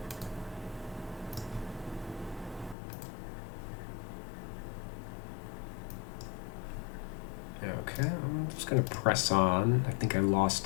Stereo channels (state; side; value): drops out; right; at 2.8 s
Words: Okay, I'm just gonna press on. I think I